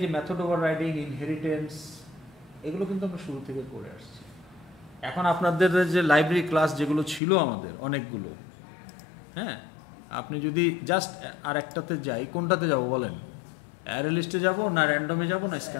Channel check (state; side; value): drops out; right; at 7.2 s